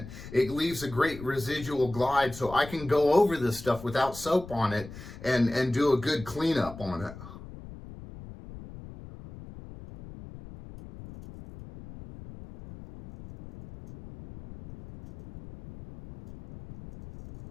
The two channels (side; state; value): left; noise; rumble, 15 dB below the sound